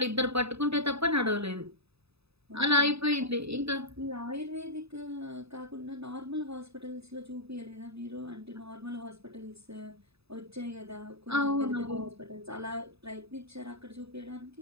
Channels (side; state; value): left; late; 0.78 ms